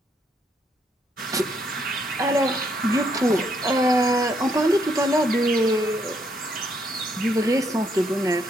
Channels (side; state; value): both; normal; correlation 0.73